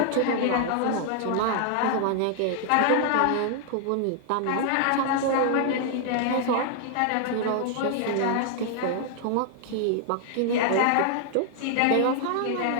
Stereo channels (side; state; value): both; different; correlation 0.00